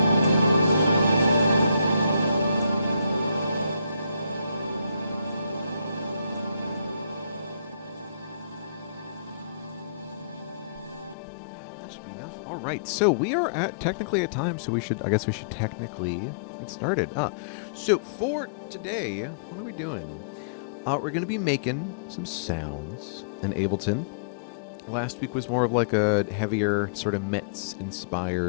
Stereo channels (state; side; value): drops out; right; at 11.2 s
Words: That should be enough. All right, so we are technically at time, so I guess we should technically get started. So for today, what are we doing? We're going to be making some sounds in Ableton. Last week was more of like a heavier, sort of